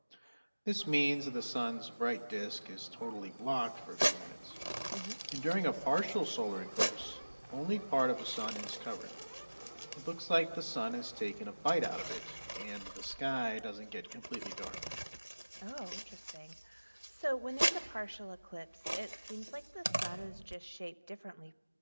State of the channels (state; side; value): inverted; both; correlation -1.00